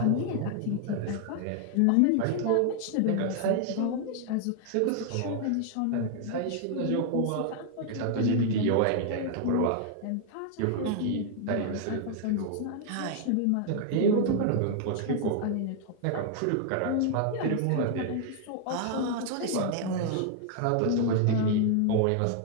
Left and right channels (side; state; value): both; different; correlation 0.00